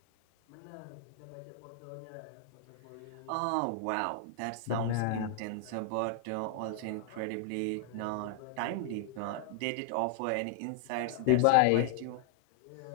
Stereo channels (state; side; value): different; both; correlation 0.00